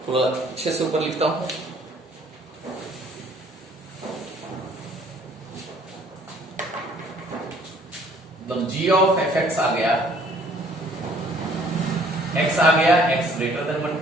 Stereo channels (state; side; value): normal; both; correlation 0.58